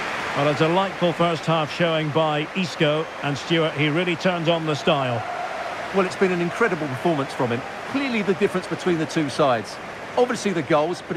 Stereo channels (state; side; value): identical; both; correlation 1.00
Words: Well, a delightful first half showing by Isco, and Stuart, he really turned on the style. Well, it's been an incredible performance from him. Clearly the difference between the two sides. Obviously the goals, but